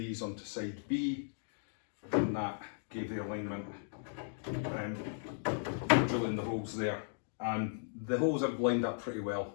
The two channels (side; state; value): right; silent; digital silence